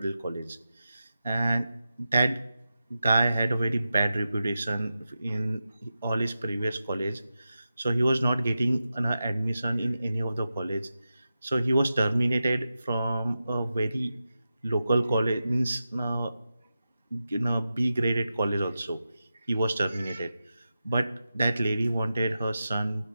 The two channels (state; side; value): inverted; both; correlation -0.91